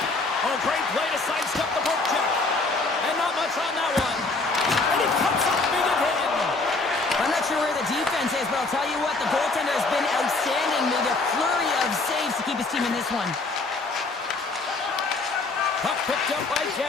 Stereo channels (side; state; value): right; quieter; 3.5 dB